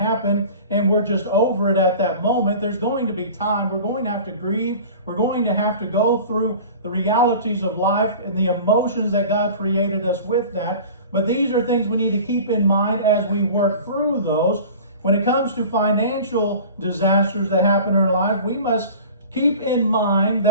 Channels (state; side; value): inverted; both; correlation -0.40